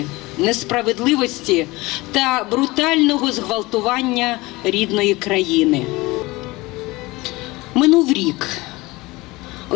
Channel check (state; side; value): quieter; right; 21.5 dB